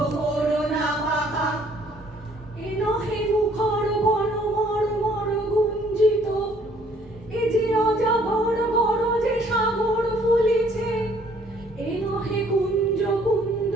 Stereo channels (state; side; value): normal; both; correlation 0.61